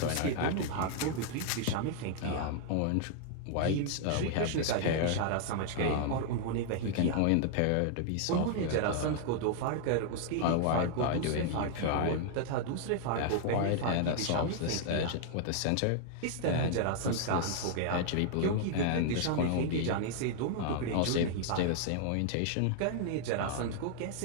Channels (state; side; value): different; both; correlation 0.00